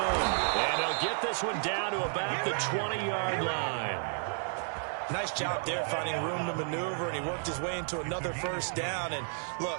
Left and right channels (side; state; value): left; silent; 55 dB below the other